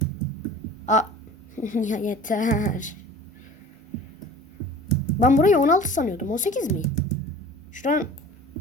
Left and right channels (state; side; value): normal; both; correlation 0.42